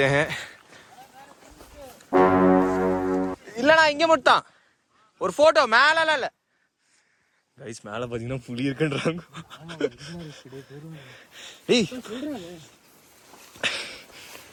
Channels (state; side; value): identical; both; correlation 1.00